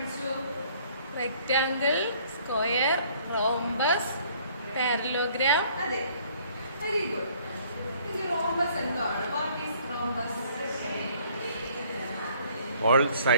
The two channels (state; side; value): inverted; both; correlation -0.59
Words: Rectangle, square, rhombus, parallelogram. അതെ, very good. Rhombus എന്താണ്? What is rhombus? All